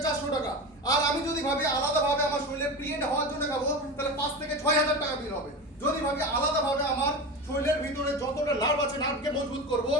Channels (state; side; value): normal; both; correlation 0.26